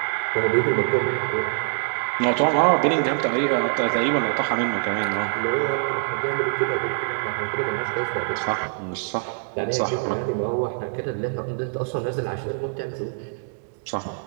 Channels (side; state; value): left; silent; digital silence